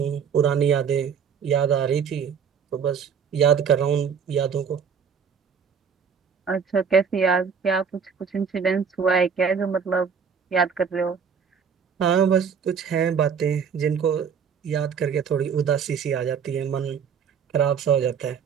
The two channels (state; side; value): quieter; left; 6.7 dB